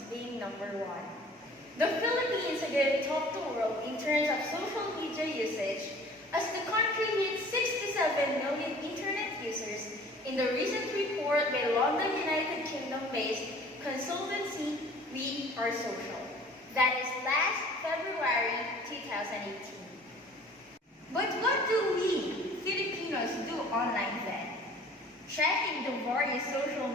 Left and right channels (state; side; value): normal; both; correlation 0.49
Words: being number one. The Philippines again topped the world in terms of social media usage as the country hit 67 million internet users in the recent report by London, United Kingdom-based consultancy We Are Social. That is last February 2018. But what do we, Filipinos, do online then? Checking the various social